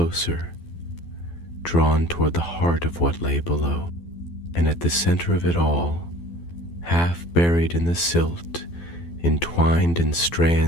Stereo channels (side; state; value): right; late; 12 ms